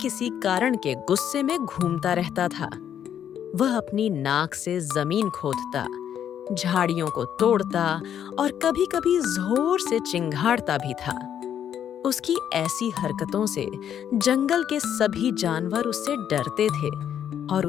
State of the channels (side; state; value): right; quieter; 9.5 dB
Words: किसी कारण के गुस्से में घूमता रहता था। वह अपनी नाक से जमीन खोदता, झाड़ियों को तोड़ता और कभी-कभी जोर से चिंघाड़ता भी था। उसकी ऐसी हरकतों से जंगल के सभी जानवर उससे डरते थे और